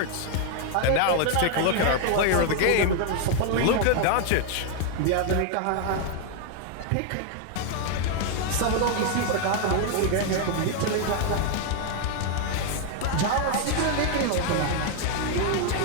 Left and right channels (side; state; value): both; different; correlation 0.00